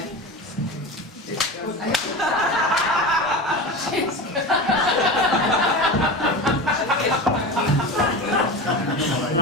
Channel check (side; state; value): both; normal; correlation 0.27